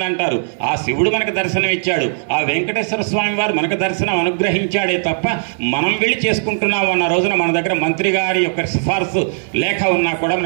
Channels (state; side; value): silent; left; digital silence